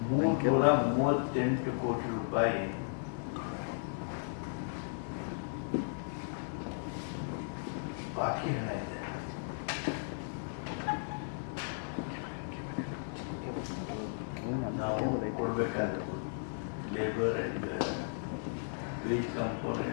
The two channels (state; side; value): silent; right; digital silence